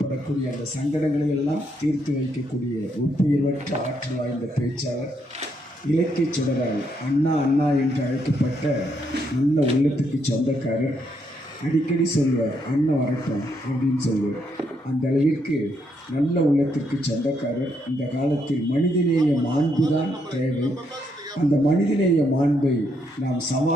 அந்த சங்கடங்களை எல்லாம் தீர்த்து வைக்கக்கூடிய ஒப்புயர்வற்ற ஆற்றல் வாய்ந்த பேச்சாளர், இலக்கிய சுடரால் அண்ணா அண்ணா என்று அழைக்கப்பட்ட நல்ல உள்ளத்துக்கு சொந்தக்காரர். அடிக்கடி சொல்வார், அண்ணன் வரட்டும் அப்படின்னு சொல்லுவார். அந்த அளவிற்கு நல்ல உள்ளத்திற்கு சொந்தக்காரர். இந்த காலத்தில் மனிதநேய மாண்பு தான் தேவை. அந்த மனிதநேய மாண்பை நாம்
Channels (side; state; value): both; normal; correlation 0.76